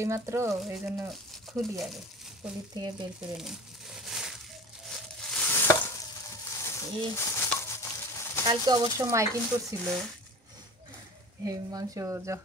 এইমাত্র, এই জন্য খুলি আগে, খুলির থেকে বের করে নিই। কালকে অবশ্য মাইকিং করছিল, এই মাংস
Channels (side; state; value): both; normal; correlation 0.37